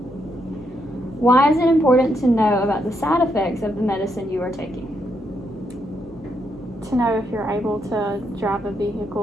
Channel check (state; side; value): normal; both; correlation 0.78